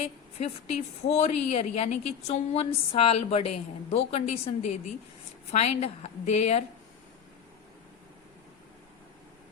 54 ईयर यानी कि 54 साल बड़े हैं, दो कंडीशन दे दी। फाइंड देयर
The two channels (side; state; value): right; quieter; 7.7 dB